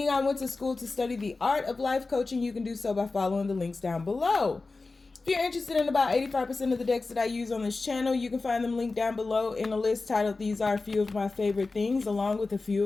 I went to school to study the art of life coaching, you can do so by following the links down below. If you're interested in about 85% of the decks that I use on this channel, you can find them linked down below in a list titled These Are a Few of My Favorite Things, along with a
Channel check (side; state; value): right; quieter; 3.7 dB